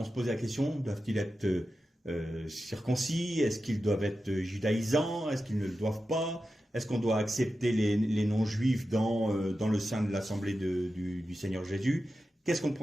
se pose la question, doivent-ils être circoncis? Est-ce qu'ils doivent être judaïsants? Est-ce qu'ils ne le doivent pas? Est-ce qu'on doit accepter les non-juifs dans le sein de l'assemblée du Seigneur Jésus? Qu'est-ce qu'on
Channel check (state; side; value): normal; both; correlation 0.92